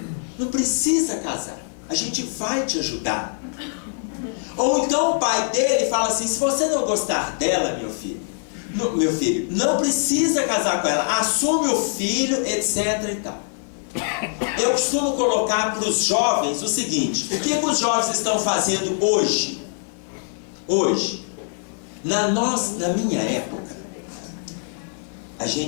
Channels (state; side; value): silent; right; 55 dB below the other